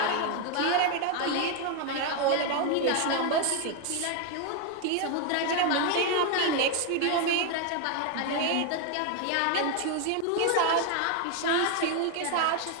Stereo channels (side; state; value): both; different; correlation 0.01